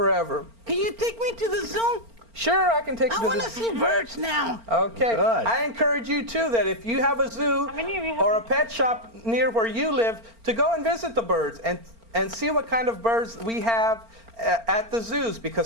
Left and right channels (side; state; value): left; late; 4.4 ms